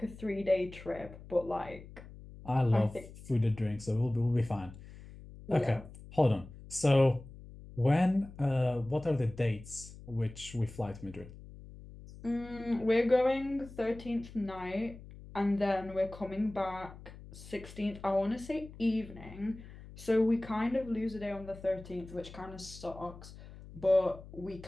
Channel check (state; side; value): noise; left; hum, 16 dB below the sound